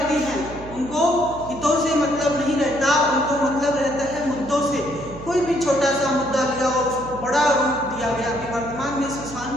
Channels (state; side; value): noise; right; hum, 15 dB below the sound